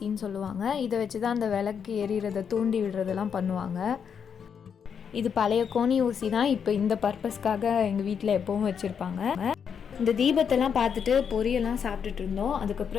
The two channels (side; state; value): right; quieter; 7.2 dB